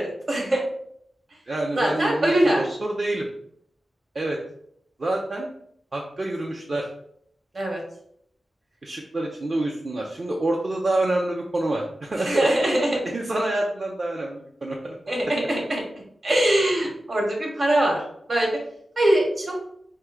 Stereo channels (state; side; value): normal; both; correlation 0.93